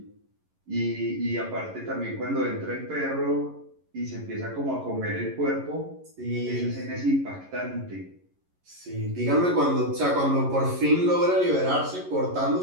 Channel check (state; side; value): late; left; 11 ms